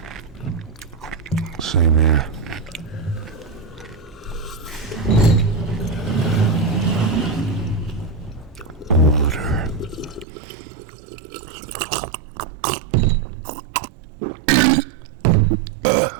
Same here. Water.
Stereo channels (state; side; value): drops out; left; at 10.2 s